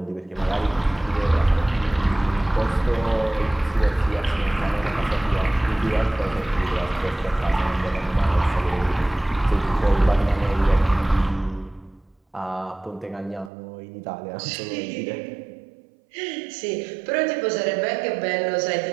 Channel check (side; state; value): left; drops out; at 13.5 s